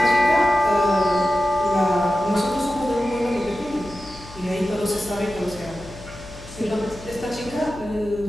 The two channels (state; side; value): noise; left; hum, 17 dB below the sound